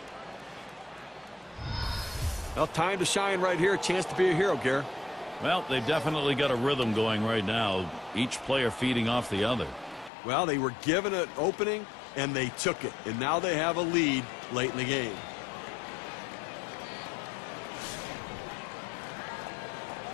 Well, time to shine right here. A chance to be a hero, Gary. Well, they've definitely got a rhythm going right now. Each player feeding off the other. Well, they were given an opening, and they took it. And now they have a lead late in the game.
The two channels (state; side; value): drops out; right; at 10.1 s